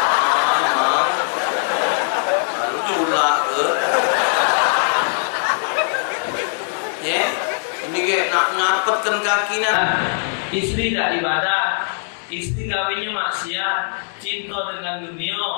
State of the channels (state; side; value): silent; right; 61 dB below the other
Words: Lalu pula ke. Ya, ini kayak nak ngapetkan kakinya. Istri tidak ibadat, istri kawinnya maksiat, cinta dengan